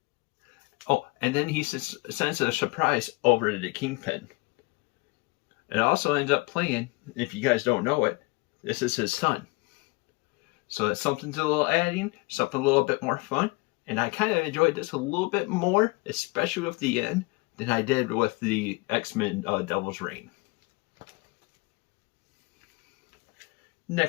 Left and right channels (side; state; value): right; quieter; 25.4 dB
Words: Oh, and then he sends a surprise over to the Kingpin. It also ends up playing, if you guys don't know it, this is his son. So that's something a little adding, something a little bit more fun. And I kind of enjoyed this a little bit more, especially with the end, than I did with the X-Men Devil's Reign.